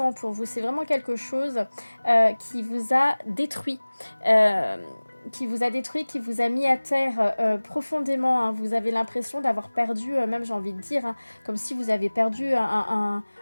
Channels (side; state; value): both; inverted; correlation -1.00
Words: pour vous. C'est vraiment quelque chose qui vous a détruit. Qui vous a mis à terre profondément. Vous avez l'impression d'avoir perdu, même j'ai envie de dire, comme si vous avez perdu